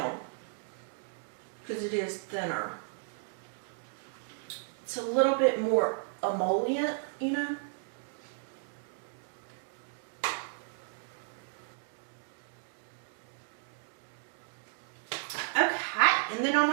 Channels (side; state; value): left; silent; digital silence